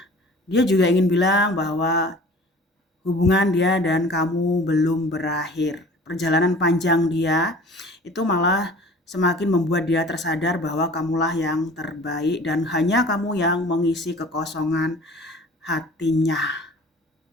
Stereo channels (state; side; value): normal; both; correlation 0.45